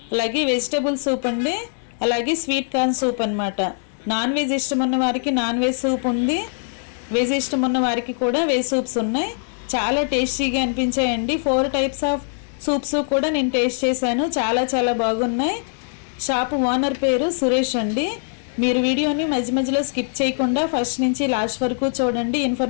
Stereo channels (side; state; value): right; silent; digital silence